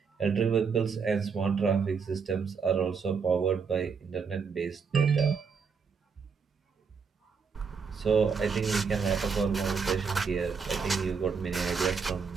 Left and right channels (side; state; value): left; quieter; 5.7 dB